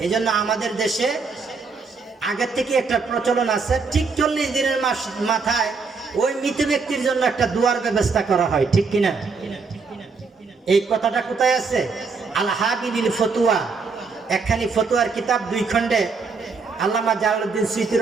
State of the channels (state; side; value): quieter; left; 4.7 dB